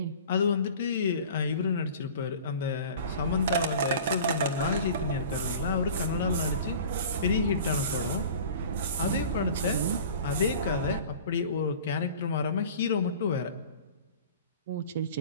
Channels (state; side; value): inverted; both; correlation -0.41